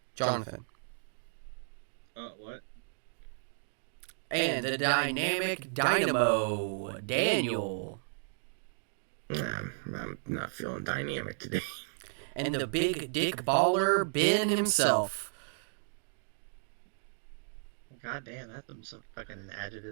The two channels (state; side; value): silent; left; digital silence